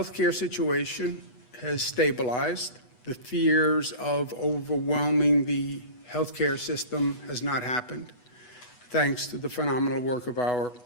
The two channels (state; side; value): late; right; 8.1 ms